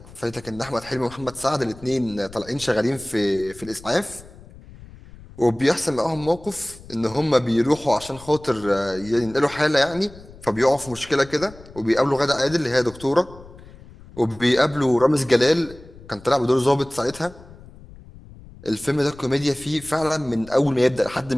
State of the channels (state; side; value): noise; left; rumble, 20 dB below the sound